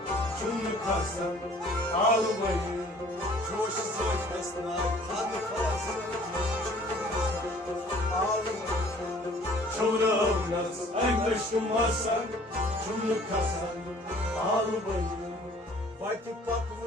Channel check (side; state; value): both; normal; correlation 0.53